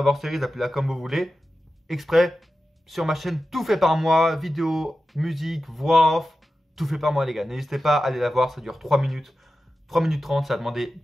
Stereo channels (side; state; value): both; normal; correlation 0.93